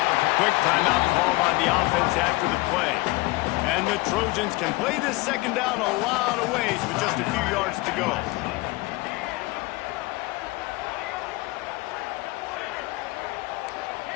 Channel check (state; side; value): quieter; right; 22.1 dB